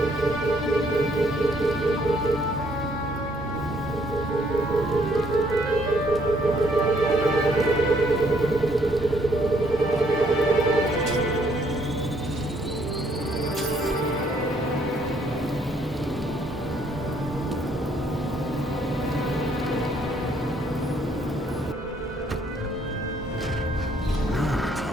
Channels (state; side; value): normal; both; correlation 0.67